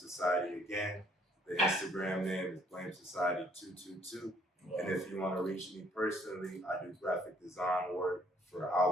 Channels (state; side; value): normal; both; correlation 0.63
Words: again. The Instagram name is Blame Society 222. And if you want to reach me personally, I do graphic design work for